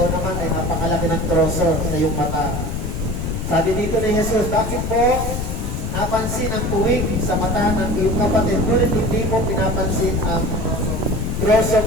naman ay napakalaki ng troso sa iyong mata. Sabi dito ni Jesus, bakit mo napansin ang puwing sa mata ng iyong kapatid, ngunit hindi mo pinapansin ang troso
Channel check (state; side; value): noise; left; rumble, 4 dB below the sound